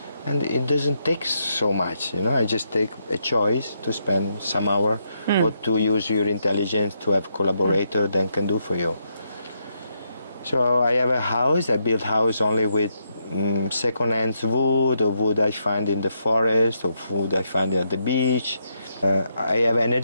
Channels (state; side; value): inverted; both; correlation -0.79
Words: And it doesn't take so much, I just take a choice to spend some hour or to use your intelligence to have collaborator that can do for you. So I have a house. I build house only with second-hand wood or wood I find in the forest or wood I find at the beach. I have